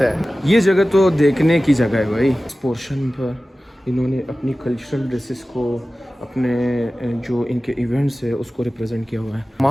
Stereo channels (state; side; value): normal; both; correlation 0.96